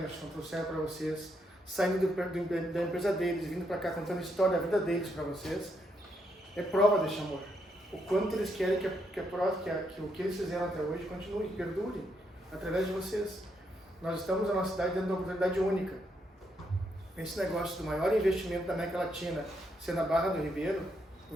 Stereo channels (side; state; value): both; normal; correlation 0.78